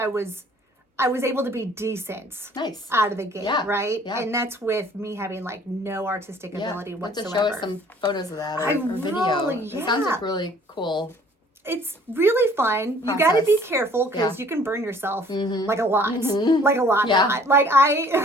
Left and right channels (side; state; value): both; normal; correlation 0.55